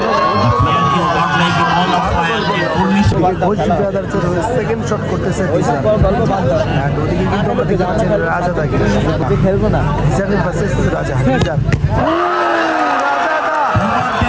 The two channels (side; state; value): both; identical; correlation 1.00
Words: Ghosh ব্রাদার্সের হয়ে সেকেন্ড শট করতেছে অ্যান্ড ওদিকে কিন্তু আমরা দেখতে পাচ্ছি রাজাদাকে খেলবো না ভার্সেস রাজা।